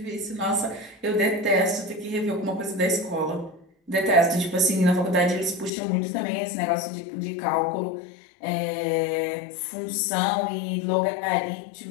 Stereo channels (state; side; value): drops out; right; at 5.7 s